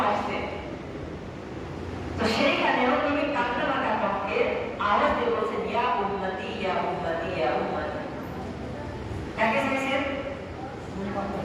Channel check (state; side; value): identical; both; correlation 1.00